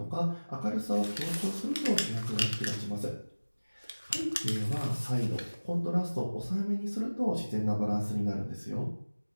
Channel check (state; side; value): inverted; both; correlation -1.00